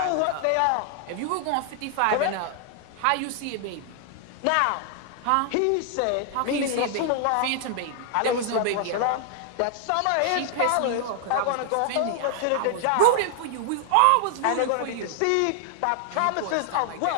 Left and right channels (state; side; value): different; both; correlation 0.00